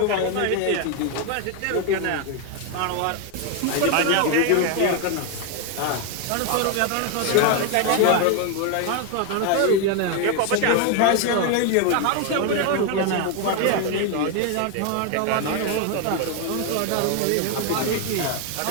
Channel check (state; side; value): different; both; correlation 0.01